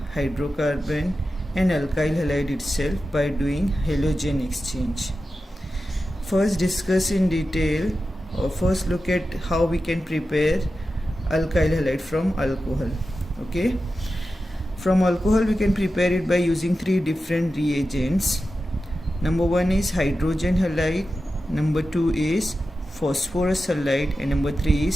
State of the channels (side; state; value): both; normal; correlation 0.92